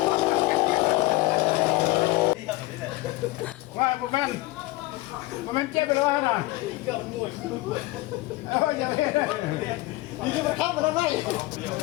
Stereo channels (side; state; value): right; quieter; 19.5 dB